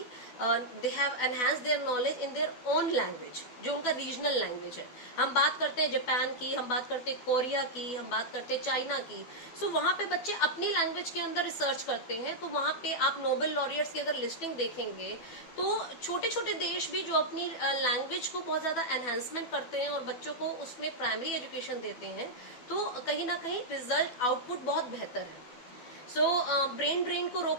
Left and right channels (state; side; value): late; right; 12 ms